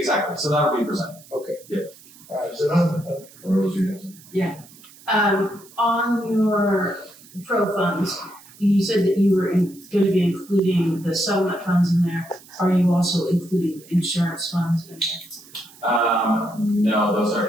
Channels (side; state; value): right; noise; hiss, 23 dB below the sound